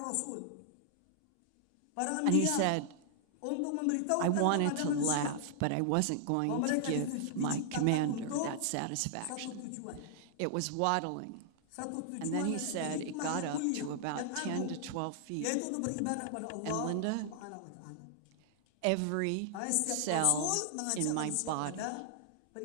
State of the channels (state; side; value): different; both; correlation -0.01